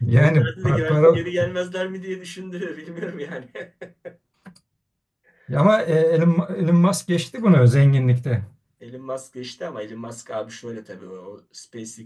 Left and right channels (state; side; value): identical; both; correlation 1.00